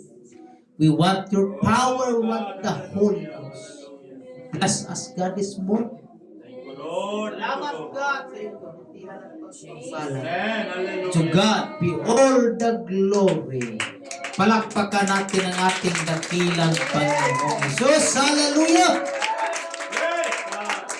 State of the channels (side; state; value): both; identical; correlation 1.00